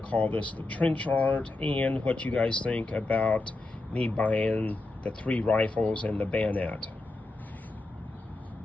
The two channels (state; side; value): quieter; right; 3.0 dB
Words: call this the trench art, and what you guys think about me buying the 3 rifles and the bayonet.